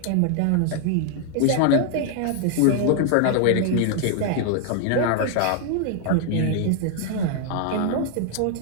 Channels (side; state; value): both; different; correlation 0.00